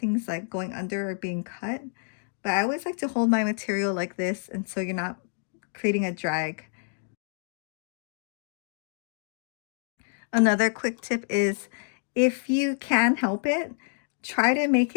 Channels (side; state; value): right; silent; digital silence